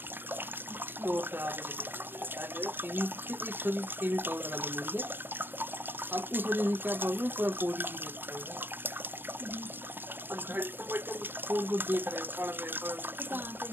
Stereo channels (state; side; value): late; left; 0.097 ms